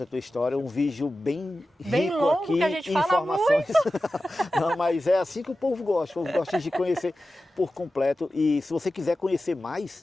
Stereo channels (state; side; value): normal; both; correlation 0.94